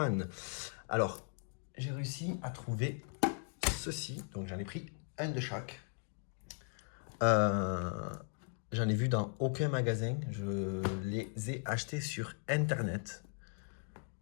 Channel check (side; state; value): right; silent; 53 dB below the other